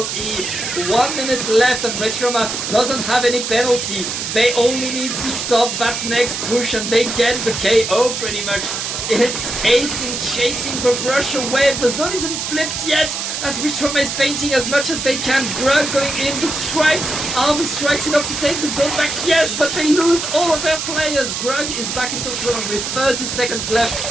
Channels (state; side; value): noise; right; hiss, 4 dB below the sound